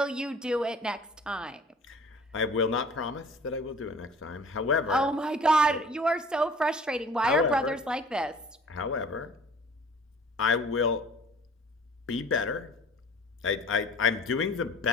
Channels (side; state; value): both; normal; correlation 0.47